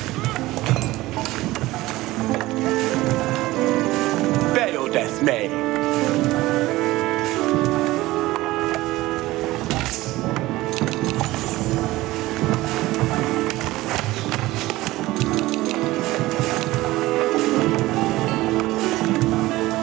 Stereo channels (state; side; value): quieter; left; 18.2 dB